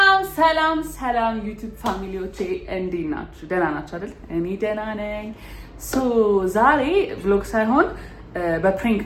ሰላም ዩቲዩብ ፋሚሊዎቼ እንዴት ናችሁ? ደህና ናችሁ አይደል? እኔ ደህና ነኝ። ዛሬ ቭሎግ ሳይሆን በፕሬንክ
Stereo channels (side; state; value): both; identical; correlation 1.00